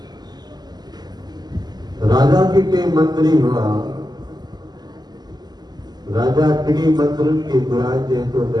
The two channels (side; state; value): left; late; 0.20 ms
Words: राजा के टे मंत्री हुआ राजा टिनी मंत्रन के घुराए जे तो